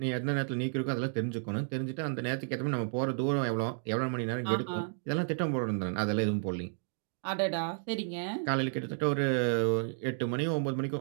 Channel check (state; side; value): silent; left; digital silence